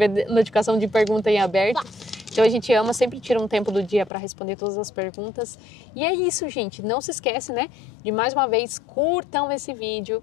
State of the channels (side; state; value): right; drops out; at 4.1 s